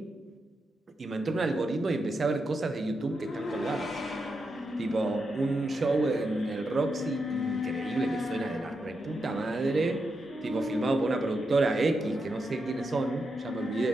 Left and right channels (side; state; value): both; normal; correlation 0.85